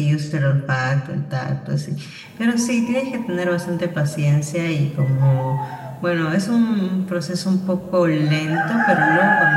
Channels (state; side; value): identical; both; correlation 1.00